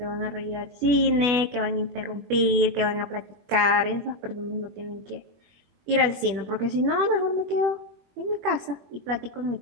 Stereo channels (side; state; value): left; late; 21 ms